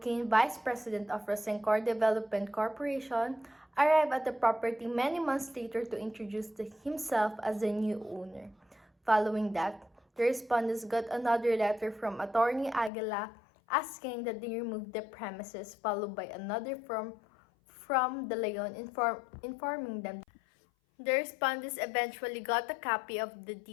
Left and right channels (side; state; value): right; drops out; at 12.9 s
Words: Vice President of Rosencor Development Corporation, arrived at the property many months later to introduce himself as the new owner. Following that, the respondents got another letter from attorney Aguila asking that they remove the premises, followed by another from De Leon informing them. The respondents eventually got a copy of the